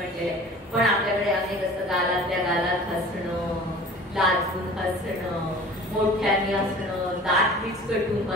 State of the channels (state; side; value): normal; both; correlation 0.43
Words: पण आपल्याकडे अनेक असतं. गालातल्या गालात हसणं, लाजून हसणं, मोठ्याने हसणं, दात विचकटून